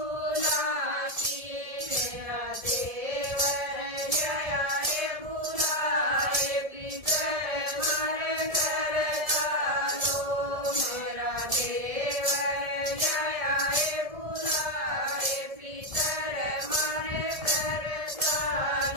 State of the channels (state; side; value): late; left; 1.7 ms